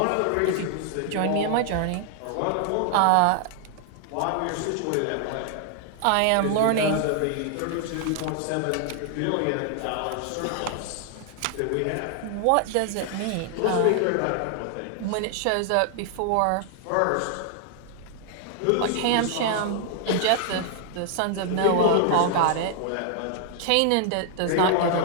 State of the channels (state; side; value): different; both; correlation 0.00